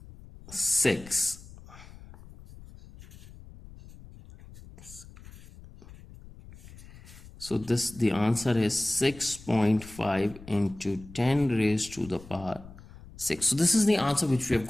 6. So this, the answer is 6.5 into 10 raised to the power 6. So this is the answer which we have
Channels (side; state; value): left; noise; rumble, 19 dB below the sound